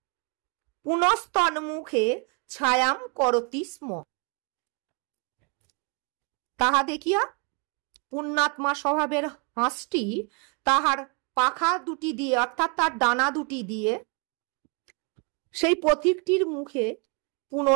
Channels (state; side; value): quieter; left; 34.7 dB